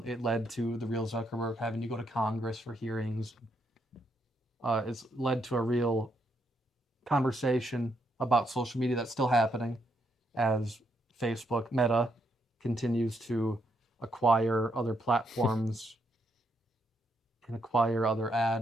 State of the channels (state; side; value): normal; both; correlation 0.77